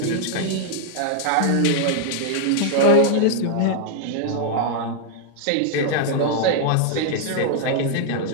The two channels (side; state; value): both; different; correlation -0.01